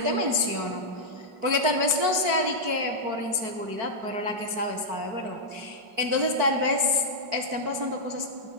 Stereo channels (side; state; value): left; late; 4.6 ms